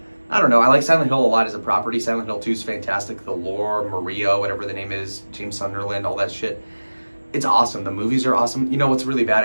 I don't know. I like Silent Hill a lot as a property. Silent Hill 2 is fantastic. The lore, Maria, whatever the name is, James Sunderland, all that shit. It's awesome. The movies are awesome. You know what's really bad?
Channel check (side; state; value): both; inverted; correlation -1.00